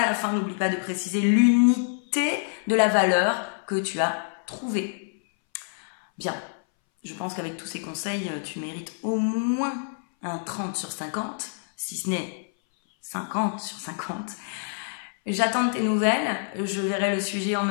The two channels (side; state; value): right; silent; 59 dB below the other